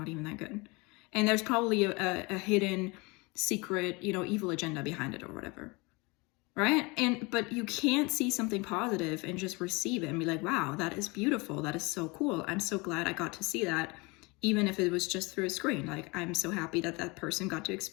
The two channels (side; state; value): right; quieter; 26.5 dB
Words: even that good. And there's probably a hidden secret, you know, evil agenda behind it or whatever. Right? But you can't see something positive and just receive it and be like, wow, that is beautiful. That is so cool. I'm so glad I got to see that, even if it was just through a screen. Like, I'm so happy that that person got to